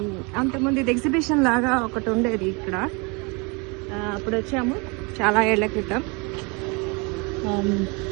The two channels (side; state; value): left; quieter; 30.2 dB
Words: అంతకుముందు ఇది ఎగ్జిబిషన్ లాగా ఒకటి ఉండేది ఇక్కడ. అప్పుడు వచ్చాము చాలా ఏళ్ల క్రితం.